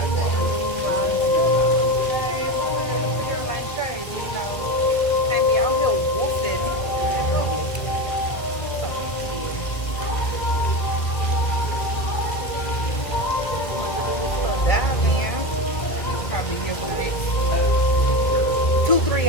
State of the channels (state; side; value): late; right; 1.9 ms